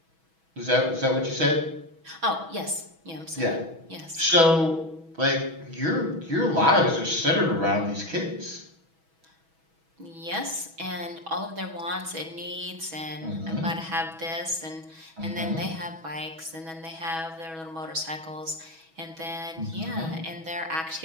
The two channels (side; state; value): left; late; 6.2 ms